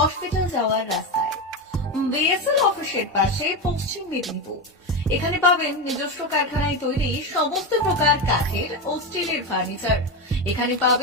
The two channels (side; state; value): both; normal; correlation 0.15